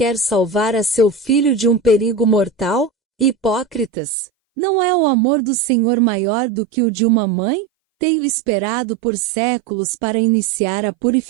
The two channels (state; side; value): drops out; left; at 3.9 s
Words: salvar a seu filho de um perigo mortal? Hipócritas! Não é o amor do Senhor maior do que o de uma mãe? Tenho esperado por séculos para iniciar a